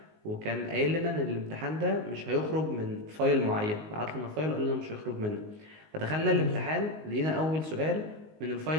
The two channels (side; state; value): left; late; 19 ms